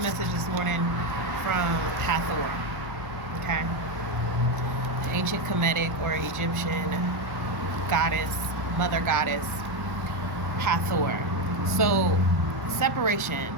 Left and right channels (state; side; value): late; left; 1.0 ms